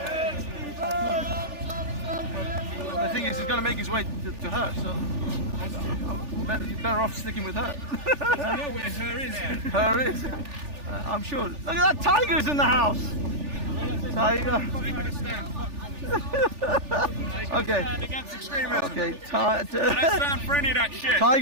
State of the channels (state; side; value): late; left; 3.4 ms